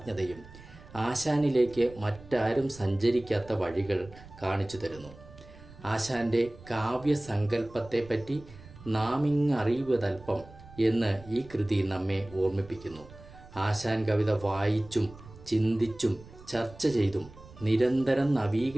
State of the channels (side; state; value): right; noise; rumble, 19 dB below the sound